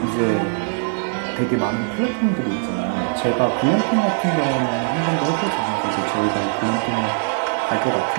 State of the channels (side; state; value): left; silent; digital silence